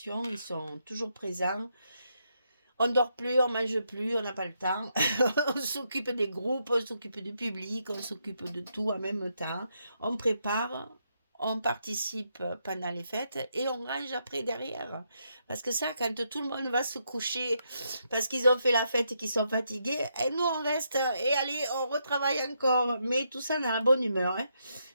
Ils sont toujours présents. On ne dort plus, on ne mange plus, on n'a pas le temps. On s'occupe des groupes, on s'occupe du public, on s'occupe de tout en même temps. On prépare, on participe pendant les fêtes et on range après derrière. Parce que ça, quand tout le monde va se coucher parce qu'ils ont fait la fête et qu'ils sont fatigués, et nous on reste et allez, on retravaille encore. Mais tout ça dans la bonne humeur. Hein.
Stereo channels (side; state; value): both; inverted; correlation -0.79